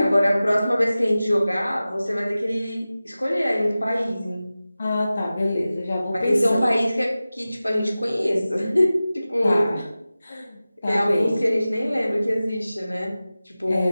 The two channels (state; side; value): inverted; both; correlation -0.96